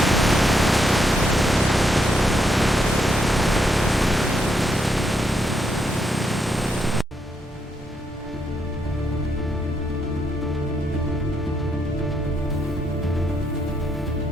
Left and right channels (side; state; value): both; normal; correlation 0.77